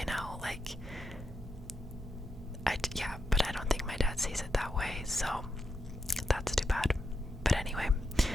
know, like, yeah, but I don't think my dad sees it that way. So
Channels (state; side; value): normal; both; correlation 0.85